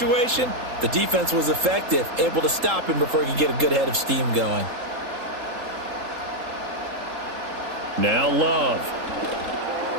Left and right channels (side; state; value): left; late; 3.8 ms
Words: the defense was effective, able to stop him before he could get a good head of steam going. Now Love.